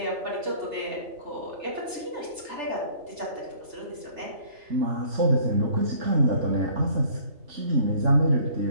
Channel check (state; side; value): late; left; 3.3 ms